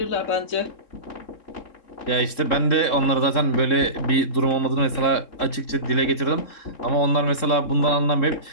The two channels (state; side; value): late; right; 3.7 ms